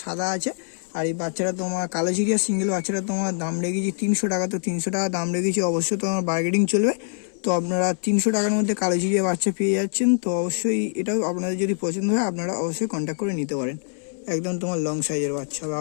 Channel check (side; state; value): right; silent; 62 dB below the other